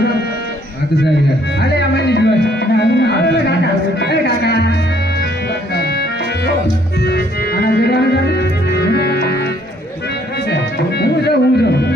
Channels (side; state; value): both; normal; correlation 0.64